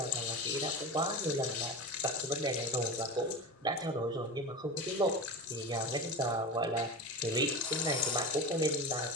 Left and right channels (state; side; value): normal; both; correlation 0.27